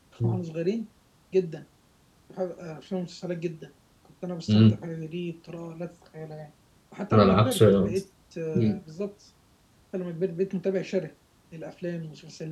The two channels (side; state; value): both; identical; correlation 1.00